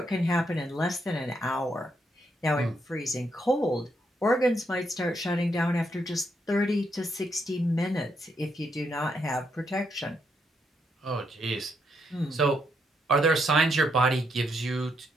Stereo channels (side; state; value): both; normal; correlation 0.78